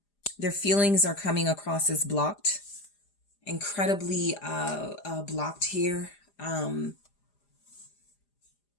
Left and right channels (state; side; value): late; right; 4.9 ms